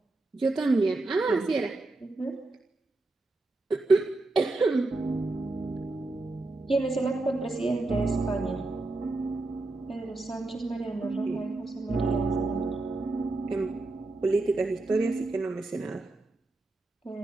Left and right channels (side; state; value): left; quieter; 3.1 dB